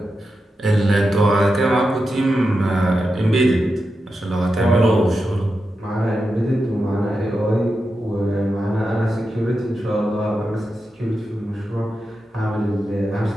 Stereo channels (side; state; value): both; normal; correlation 0.89